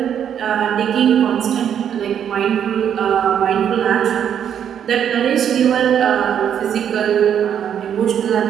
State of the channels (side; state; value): left; quieter; 9.0 dB